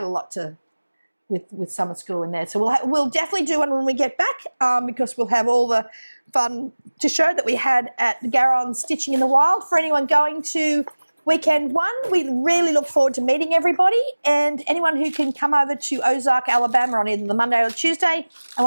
a lot with summer school in there. So we'll definitely do one when we get back because we'll have all the fun to show that we had at the Garron Stitching in the Wild. For anyone going to weekend 1, we really look forward to meeting everybody, and anyone who can come over to Ozark, Alabama on either the Monday or Tuesday and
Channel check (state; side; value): inverted; both; correlation -1.00